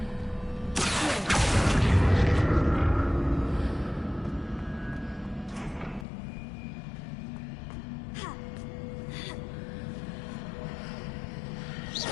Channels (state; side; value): drops out; right; at 6.1 s